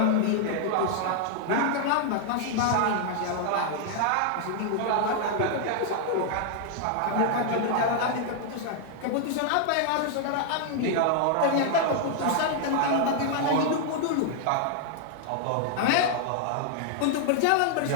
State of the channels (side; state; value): both; different; correlation 0.00